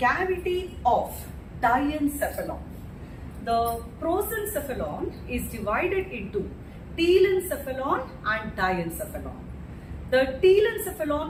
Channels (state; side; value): identical; both; correlation 1.00